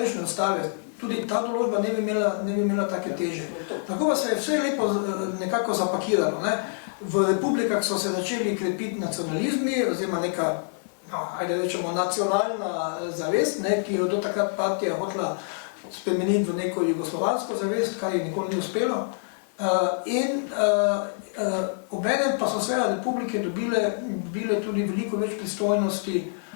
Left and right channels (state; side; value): silent; right; 59 dB below the other